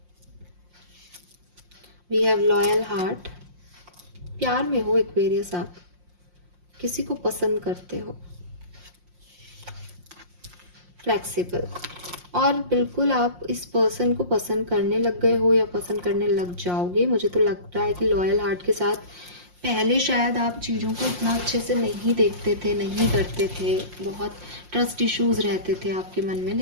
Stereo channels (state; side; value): late; left; 5.6 ms